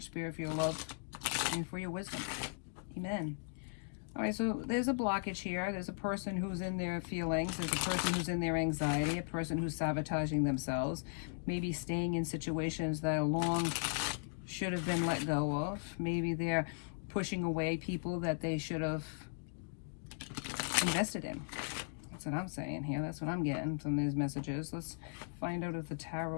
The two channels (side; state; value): right; silent; digital silence